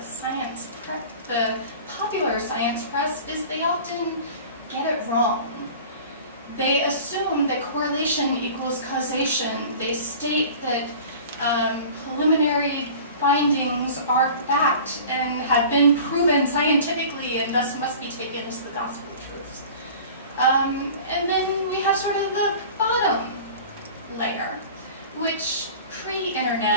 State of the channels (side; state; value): both; inverted; correlation -0.41